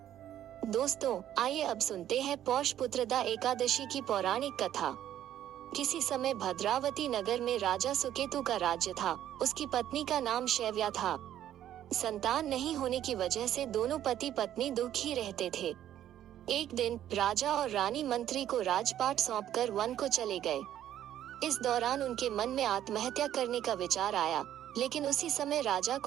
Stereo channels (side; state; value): left; quieter; 11.4 dB